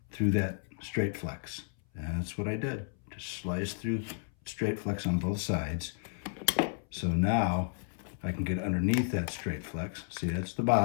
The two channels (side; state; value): right; silent; 56 dB below the other